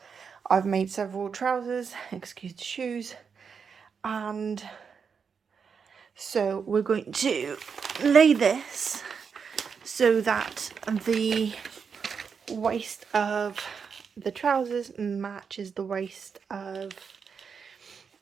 I've made several trousers, excuse the shoes, and so we're going to lay this so that the waist of the trousers matches the waist of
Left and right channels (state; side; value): quieter; left; 6.2 dB